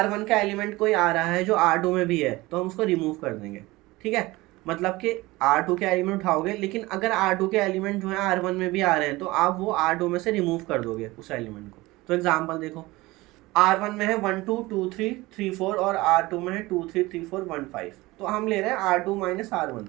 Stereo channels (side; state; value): left; quieter; 20.4 dB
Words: का एलिमेंट कोई आ रहा है जो R2 में भी है तो हम उसको रिमूव कर देंगे, ठीक है। मतलब कि R2 के एलिमेंट उठाओगे, लेकिन अगर R2 के एलिमेंट जो है R1 में भी आ रहे हैं तो आप वो R2 में से रिमूव कर दोगे उस एलिमेंट को। तो एग्जांपल देखो, R1 में है 1 2 2 3 3 4 और R2 में है 2 3 3 4 1 5। तो हम ले रहे हैं R2 माइनस R1।